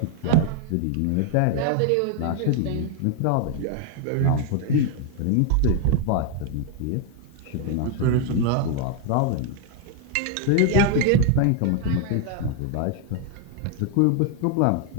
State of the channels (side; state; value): both; different; correlation 0.00